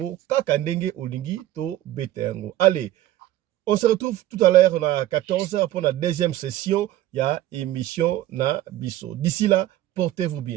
kaka ndenge olingi to bete yango. Allez, on se retrouve tout à l'heure à 14h pour la deuxième session. Il y a émission na biso. D'ici là, portez-vous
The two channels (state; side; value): quieter; left; 14.1 dB